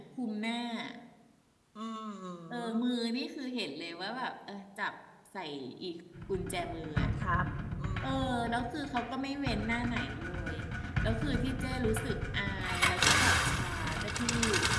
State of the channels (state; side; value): identical; both; correlation 1.00